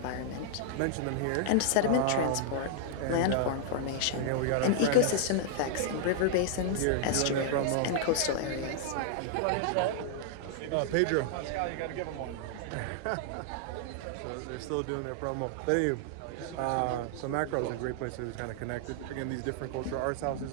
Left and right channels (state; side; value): different; both; correlation -0.01